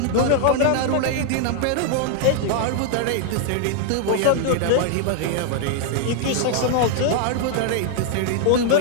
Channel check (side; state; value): both; different; correlation 0.00